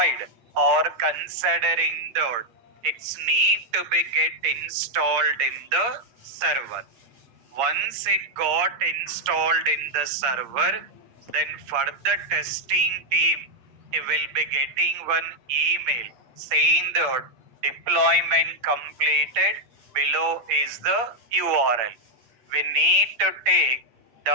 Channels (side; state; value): left; late; 8.6 ms